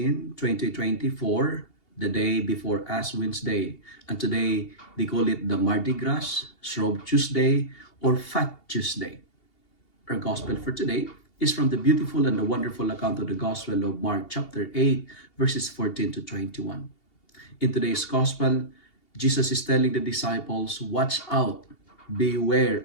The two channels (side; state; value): right; late; 2.8 ms